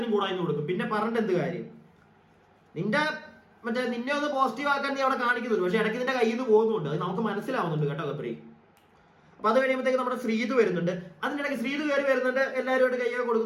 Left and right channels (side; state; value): both; identical; correlation 1.00